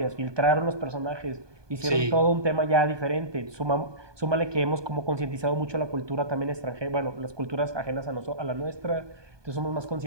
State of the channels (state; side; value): late; left; 1.2 ms